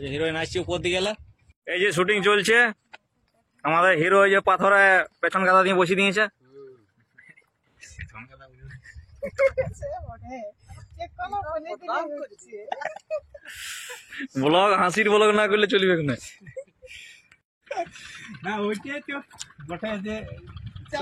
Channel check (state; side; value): identical; both; correlation 1.00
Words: যে হিরোইন আসছে উপর দিকে গেলে। এই যে শুটিং চলছে, আমাদের হিরো এই যে পাথরে পেছন গাদা দিয়ে বসিয়ে দিয়েছে। ব্লগ হাসির ব্লগ না করলে চলবে না।